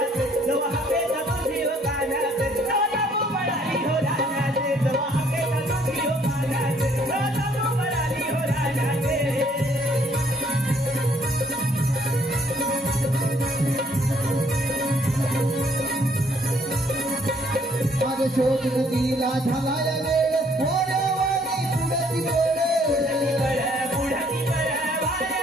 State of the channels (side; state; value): both; normal; correlation 0.64